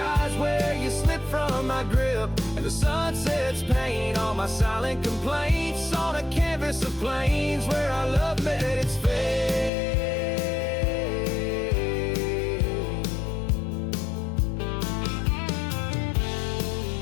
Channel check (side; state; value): right; drops out; at 9.7 s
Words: where you slip from my grip, and the sun sets paint on my silent complaints, on a canvas of plains where our love met its fate.